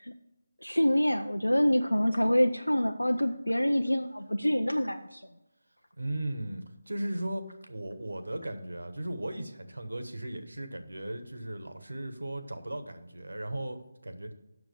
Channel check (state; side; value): inverted; both; correlation -0.99